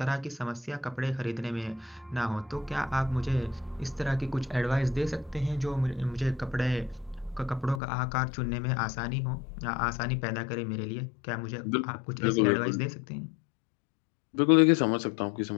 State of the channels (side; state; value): right; drops out; at 7.8 s